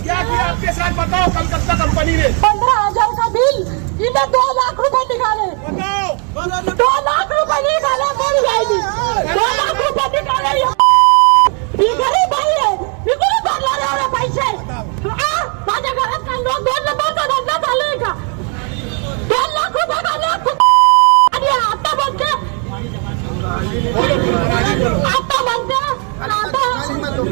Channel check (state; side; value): quieter; left; 38.3 dB